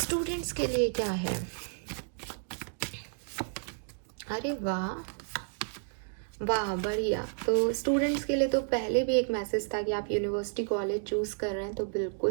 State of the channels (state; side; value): silent; left; digital silence